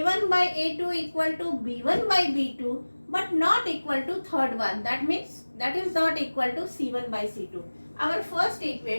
by A2 equal to B1 by B2 but not equal to third one. That means that is not equal to C1 by C2. Our first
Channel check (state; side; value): inverted; both; correlation -1.00